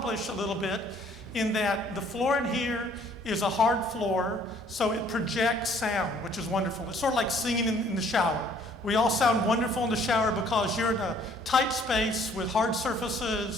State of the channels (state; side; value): noise; left; rumble, 28 dB below the sound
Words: a little bit, in that the floor in here is a hard floor, so it projects sound, which is wonderful. It's sort of like singing in the shower. We all sound wonderful in the shower because you're in a tight space with hard